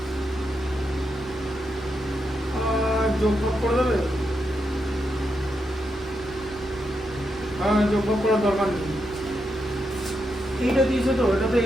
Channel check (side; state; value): both; normal; correlation 0.84